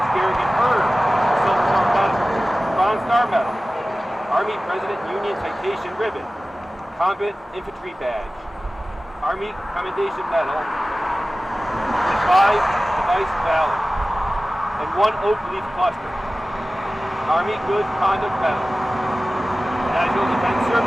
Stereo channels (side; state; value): both; normal; correlation 0.97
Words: Garigen earned the Silver Star Medal, Bronze Star Medal, Army President Union Citation Ribbon, Combat Infantry Badge, Army Commendation Medal, 5 Device Valor, and 1 Oak Leaf Cluster, Army Good Conduct Medal, National Defense